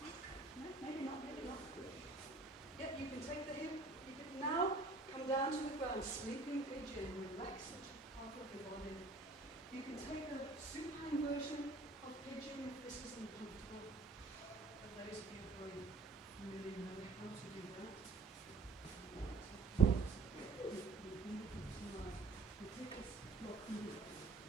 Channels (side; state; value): left; quieter; 3.6 dB